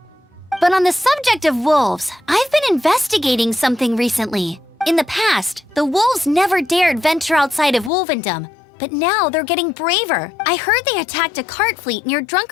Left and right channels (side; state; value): right; drops out; at 7.9 s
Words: But on the subject of wolves, I've been investigating something recently. In the past, the wolves never dared venture outside of Wolvendom, but now they're getting braver. I heard they attacked a cart fleet near